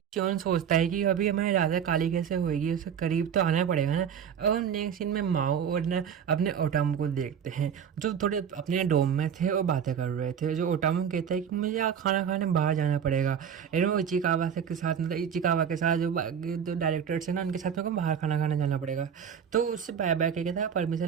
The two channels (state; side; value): quieter; left; 8.0 dB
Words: सियोन सोचता है कि अभी हमारी राजा काली कैसे होएगी, उसके करीब तो आना पड़ेगा ना। अब हम नेक्स्ट सीन में माओ और ना अपने ओटामू को देखते हैं, जो थोड़े अपने डोम में थे और बातें कर रहे थे। जो ओटामू कहता है कि मुझे यहाँ खाना खाने बाहर जाना पड़ेगा, वो इचिकावा से के साथ, मतलब इचिकावा के साथ जो डायरेक्टर्स हैं ना, उनके साथ में को बाहर खाना खाने जाना पड़ेगा। तो उससे बाय बाय कह कहता है,